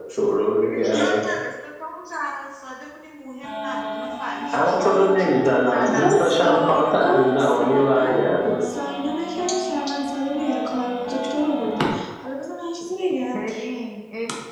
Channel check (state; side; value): identical; both; correlation 1.00